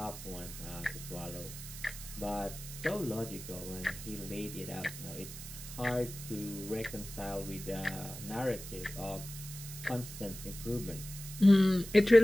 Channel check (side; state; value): right; noise; hiss, 11 dB below the sound